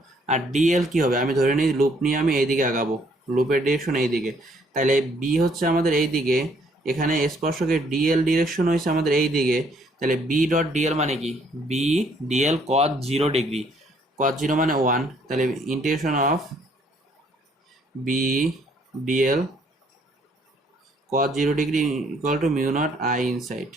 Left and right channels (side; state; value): both; normal; correlation 0.65